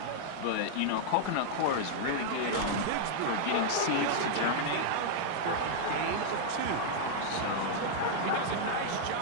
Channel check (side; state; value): both; different; correlation -0.01